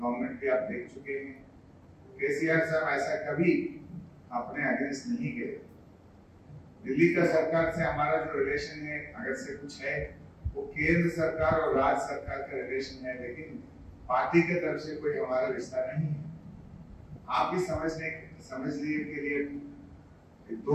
भी आप देख चुके हैं। केसीआर साहब ऐसा कभी अपने अगेंस्ट नहीं गए। दिल्ली का सरकार से हमारा जो रिलेशन है, अगर से कुछ है, वो केंद्र सरकार और राज्य सरकार का रिलेशन है, लेकिन पार्टी के तरफ से कोई हमारा रिश्ता नहीं है। आप भी समझ लिए के लिए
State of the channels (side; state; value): both; identical; correlation 1.00